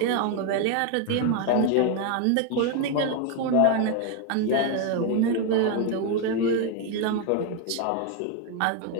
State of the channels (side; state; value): both; different; correlation 0.01